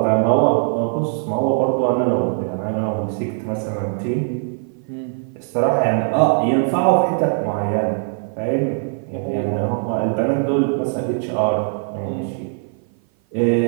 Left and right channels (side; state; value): left; silent; 56 dB below the other